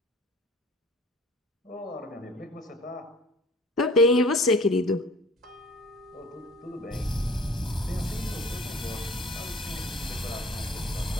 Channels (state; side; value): normal; both; correlation 0.47